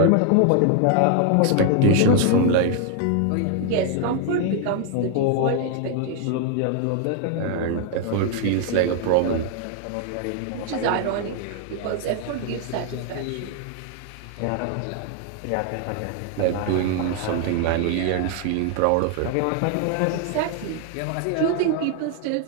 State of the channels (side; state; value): both; different; correlation 0.00